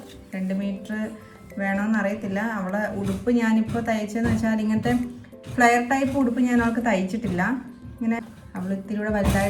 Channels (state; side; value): identical; both; correlation 1.00